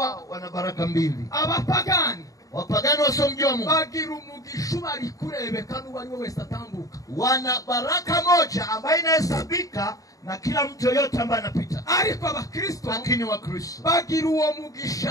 wana baraka mbili. Abapagani wapagani wasiomjua Mungu bagira umugisha bari kurebeka n'uwo ari we wese atambuka. Wana baraka moja ambayo inahesabika na kila mtu yote ambaye anapita. Ariko Abakristo lakini Wakristo bagira uwo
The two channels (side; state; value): right; late; 0.17 ms